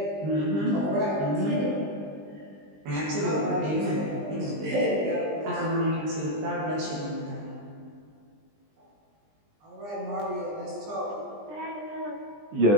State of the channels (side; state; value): left; late; 20 ms